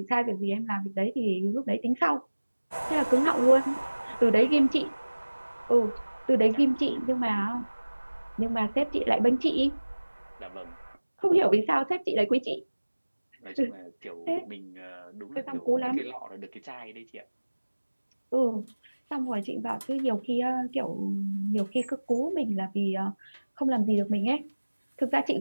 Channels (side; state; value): both; inverted; correlation -1.00